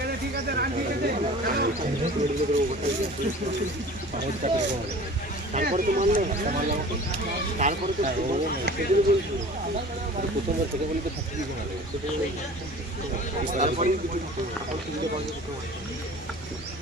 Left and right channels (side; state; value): both; normal; correlation 0.42